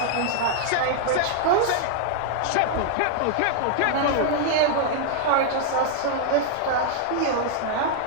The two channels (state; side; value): different; both; correlation -0.01